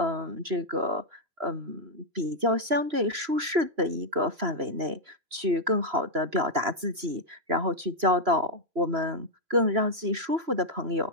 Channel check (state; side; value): late; left; 3.0 ms